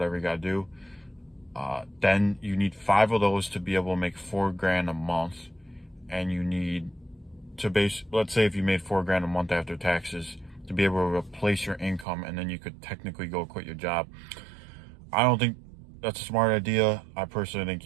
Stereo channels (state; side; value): drops out; left; at 12.1 s